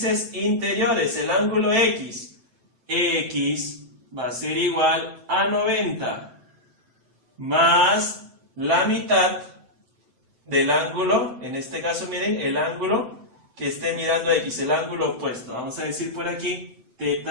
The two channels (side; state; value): left; late; 7.8 ms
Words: interiores, el ángulo X va a ser igual a 90 más la mitad del ángulo, en este caso miren, el ángulo que esté mirando a X, el ángulo opuesto. Vamos a decir por aquí